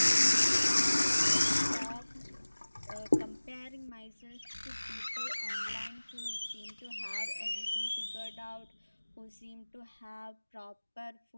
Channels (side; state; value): both; inverted; correlation -1.00